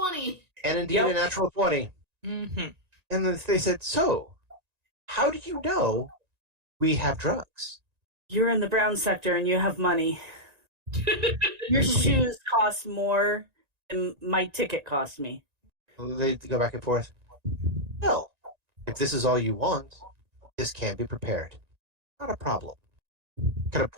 And indeed a natural 20. Mm-hmm. And then they said, so, how do you know we have drugs? You're in the brown sector and you have money. Your shoes cost more than my ticket cost me. They go back and forth. Well, if this is all you want, this can be prepared. Not a problem. Kind of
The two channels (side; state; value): left; late; 1.9 ms